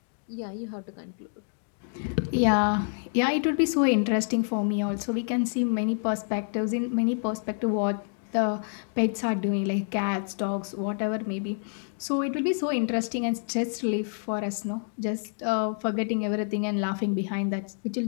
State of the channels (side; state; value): right; silent; 59 dB below the other